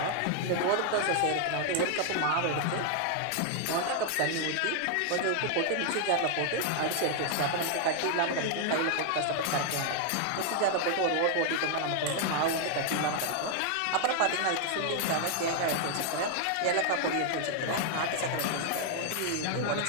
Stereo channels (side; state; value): both; different; correlation 0.00